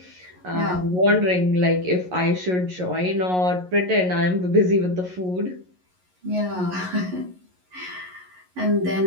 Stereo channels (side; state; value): left; late; 11 ms